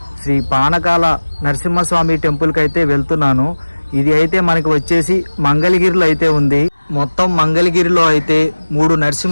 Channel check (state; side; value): inverted; both; correlation -1.00